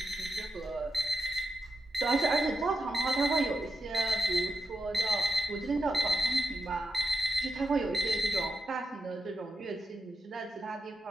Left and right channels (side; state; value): both; normal; correlation 0.86